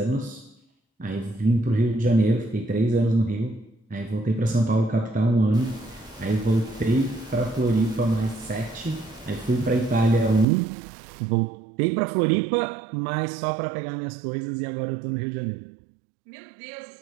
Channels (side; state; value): left; drops out; at 10.5 s